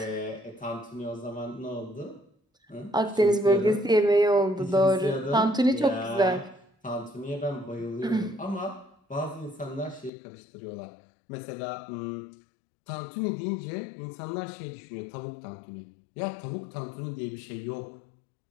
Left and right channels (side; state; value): right; drops out; at 10.1 s